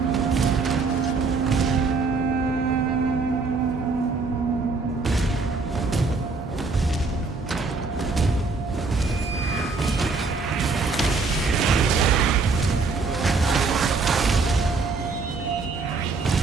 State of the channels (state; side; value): quieter; left; 4.2 dB